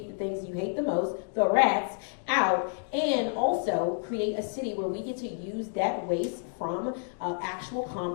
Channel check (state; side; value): silent; right; digital silence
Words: the things you hate the most, the rats, out, and also create a city where we get to use that waste from actual